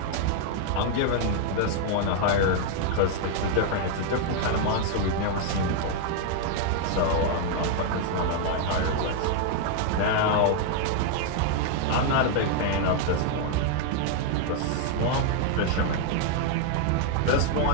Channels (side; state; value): both; different; correlation 0.00